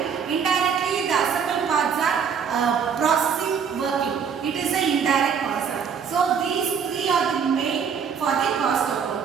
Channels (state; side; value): quieter; left; 6.8 dB